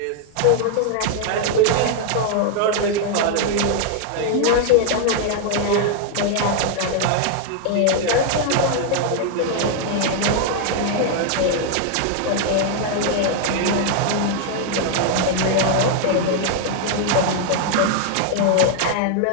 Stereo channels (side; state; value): both; different; correlation 0.00